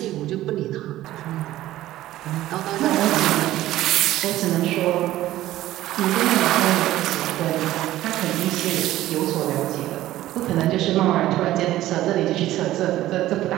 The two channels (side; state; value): left; quieter; 14.8 dB